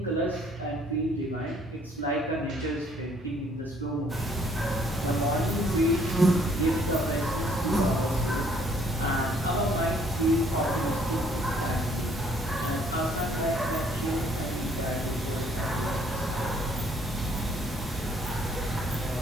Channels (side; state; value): both; normal; correlation 0.62